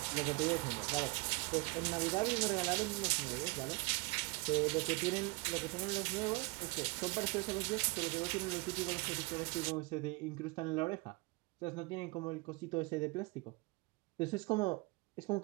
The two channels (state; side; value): quieter; left; 26.5 dB